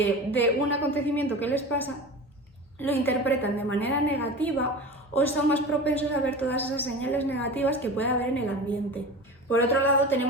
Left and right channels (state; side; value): normal; both; correlation 0.32